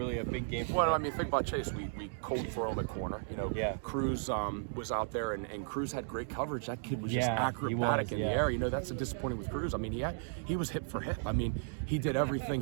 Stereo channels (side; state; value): left; silent; digital silence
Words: a big game for Well, him. I mean, think about Chase. We cold throw him at corner. You know, Yeah. Cruz was out there, and Cruz had great coverage. That kid was just Yeah, acrobatic in the yeah. air. You know, that's a disappointing with Cruz. I mean, he was hip for hip. I mean, he did everything